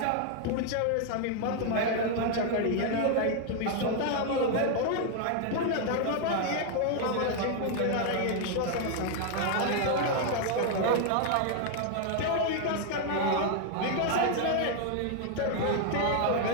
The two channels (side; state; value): both; different; correlation 0.00